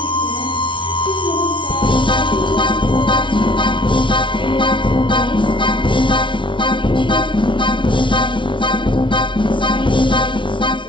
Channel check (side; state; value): right; late; 0.24 ms